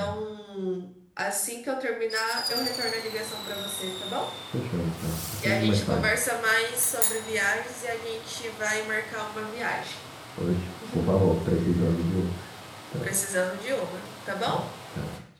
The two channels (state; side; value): identical; both; correlation 1.00